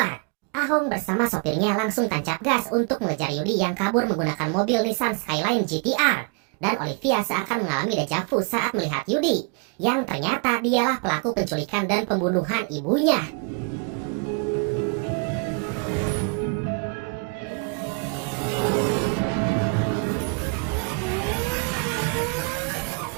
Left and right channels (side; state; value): left; quieter; 34.6 dB